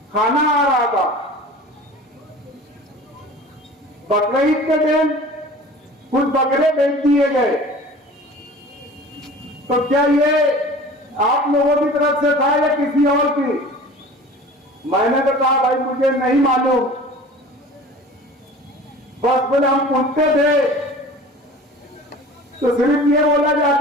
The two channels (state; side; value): normal; both; correlation 0.41